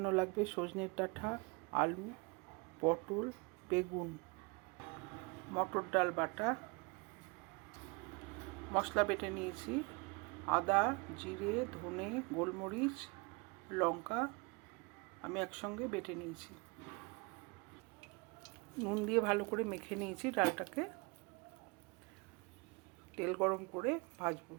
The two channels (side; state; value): left; quieter; 29.0 dB